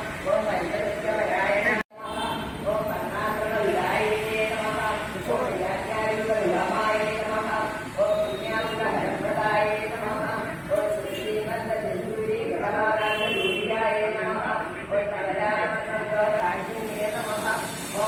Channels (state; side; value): identical; both; correlation 1.00